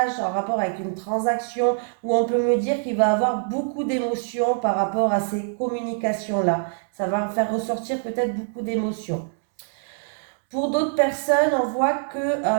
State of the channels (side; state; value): left; silent; 63 dB below the other